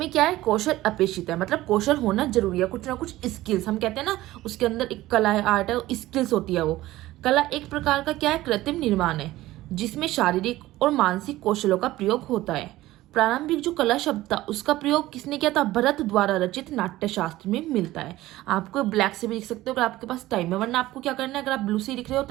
क्या है, कौशल अपेक्षित है। मतलब कौशल होना जरूरी है, कुछ ना कुछ स्किल्स, हम कहते हैं ना उसके अंदर एक कला है, आर्ट है, स्किल्स होती है वो। कला एक प्रकार का क्या है, कृत्रिम निर्माण है जिसमें शारीरिक और मानसिक कौशलों का प्रयोग होता है। प्रारंभिक जो कला शब्द था उसका प्रयोग किसने किया था, भरत द्वारा रचित नाट्य शास्त्र में मिलता है। आपको ब्लैक से भी लिख सकते हो अगर आपके पास टाइम है, वरना आपको क्या करना है, अगर आप ब्लू से लिख रहे हो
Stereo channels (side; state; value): left; quieter; 16.6 dB